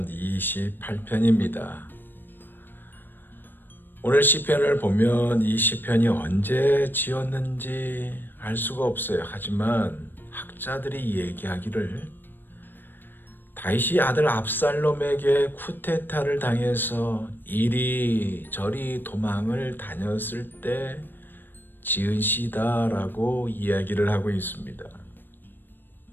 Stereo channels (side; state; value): right; late; 0.094 ms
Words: 28편입니다. 오늘 시편을 보면 이 시편이 언제 지었는지 알 수가 없어요. 하지만 학자들이 얘기하기를 다윗이 아들 압살롬에게 쿠데타를 당해서 이리저리 도망을 다녔을 때 지은 시다라고 이야기를 하고 있습니다.